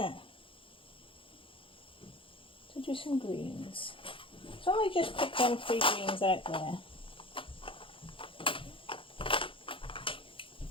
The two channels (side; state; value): right; late; 0.25 ms